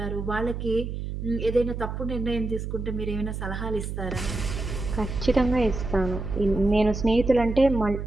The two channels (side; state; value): right; noise; hum, 5 dB below the sound